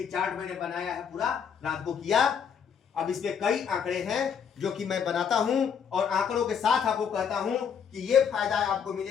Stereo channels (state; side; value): quieter; right; 7.2 dB